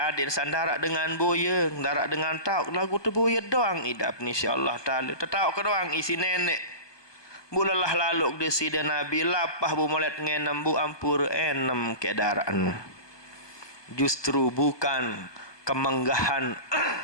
sandara dengan boyeng, darak dengan tauk lagu tu boyeng doang idap ni insya-Allah taala. Tetauk ke doang isi nenek. Bulalah laluk de sida Nabi lapah bu molet ngenem bu ampur enem ke daran. Justru bukan kemenggahan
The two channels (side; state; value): right; late; 1.2 ms